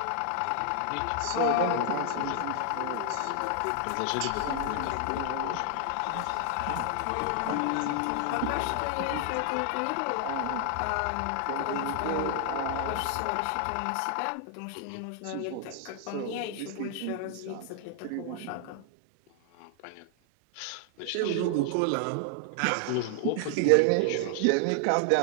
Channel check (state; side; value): different; both; correlation 0.00